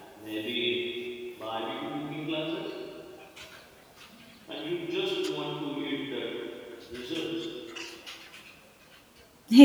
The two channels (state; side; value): identical; both; correlation 1.00